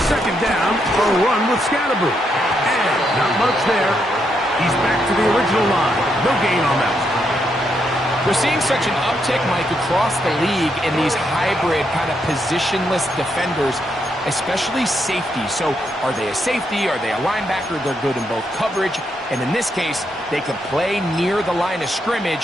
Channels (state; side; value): normal; both; correlation 0.79